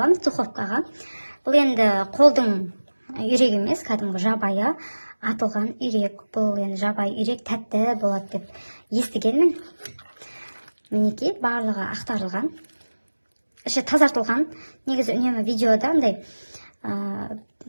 духовкаға. Бұл енді қолдың үйрек емес, кәдімгі жабайы атылған үйрек. Бұл енді жабайы үйрек тәтті болады деп естігенмін. Мінекей, барлығы ақтарылған, іші тазартылған. Негізі үнемі видеода андай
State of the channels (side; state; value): both; inverted; correlation -1.00